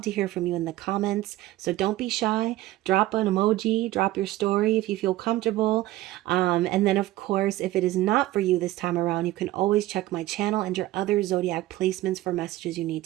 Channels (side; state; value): left; quieter; 16.2 dB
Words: to hear from you in the comments. So don't be shy. Drop an emoji, drop your story if you feel comfortable. And then, of course, if it is not for you this time around, you can always check my channel and your other zodiac placements for messages you need